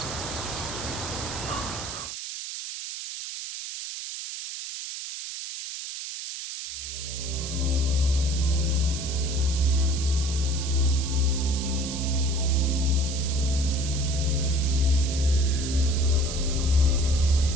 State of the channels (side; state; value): right; noise; hiss, 7 dB below the sound